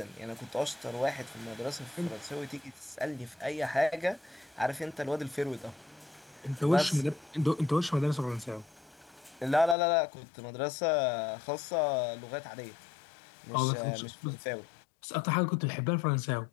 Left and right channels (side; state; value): right; drops out; at 9.8 s